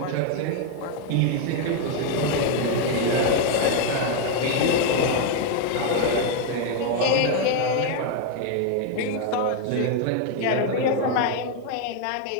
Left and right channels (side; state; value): both; different; correlation 0.01